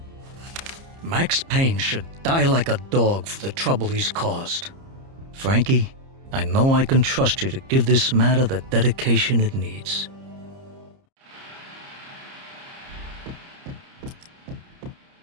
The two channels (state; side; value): late; left; 30 ms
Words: Max Payne should die like a dog for the trouble he's caused. Frankie, I know I can trust you to give this matter the dedication it needs.